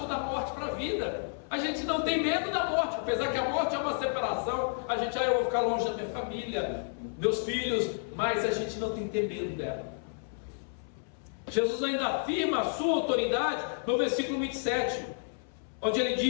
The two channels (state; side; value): silent; right; 57 dB below the other